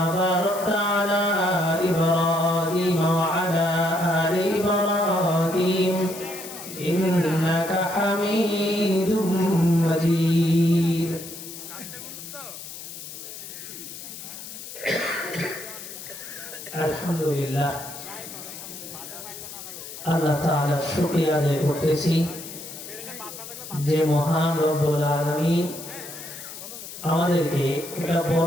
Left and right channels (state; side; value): noise; left; hiss, 12 dB below the sound